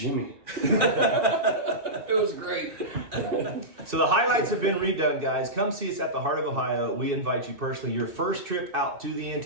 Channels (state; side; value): late; left; 2.6 ms